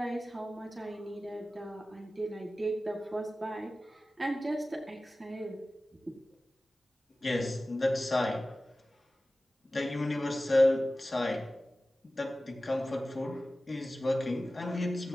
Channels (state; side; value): normal; both; correlation 0.96